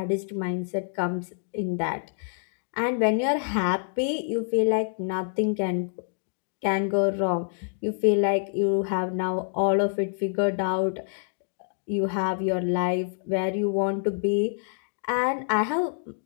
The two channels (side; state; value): right; silent; digital silence